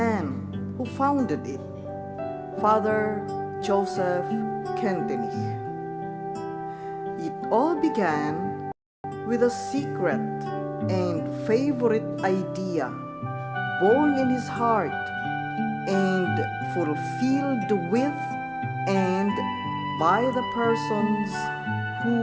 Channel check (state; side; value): identical; both; correlation 1.00